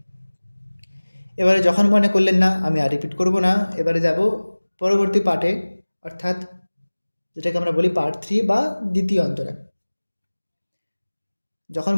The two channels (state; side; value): inverted; both; correlation -1.00